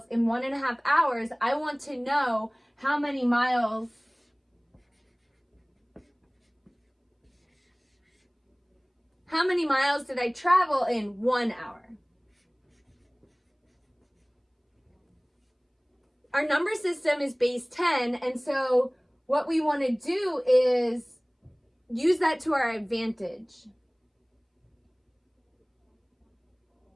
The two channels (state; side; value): identical; both; correlation 1.00